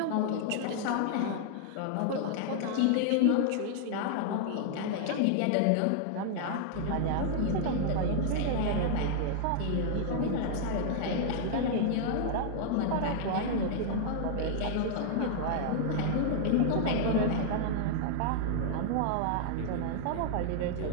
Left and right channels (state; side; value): different; both; correlation -0.01